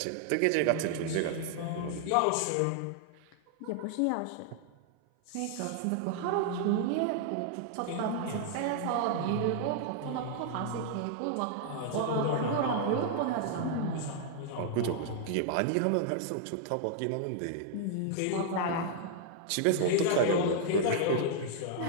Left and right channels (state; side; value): different; both; correlation -0.01